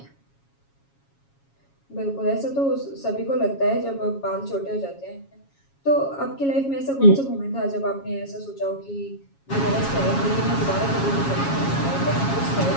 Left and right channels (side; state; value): right; late; 7.3 ms